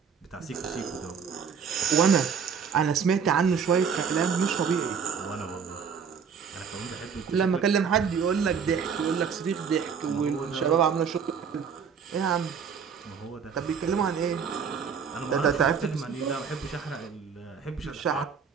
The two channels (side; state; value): left; quieter; 6.6 dB